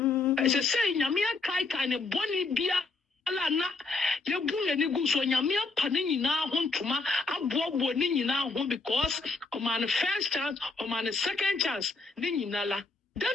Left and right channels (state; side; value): quieter; right; 3.8 dB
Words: e say nyame kai ne boni bia ala na yebu ni gu so nyame apa ni nyina ho ntoma abobo ni nyina ho because o man first chance o man second chance ni nyina la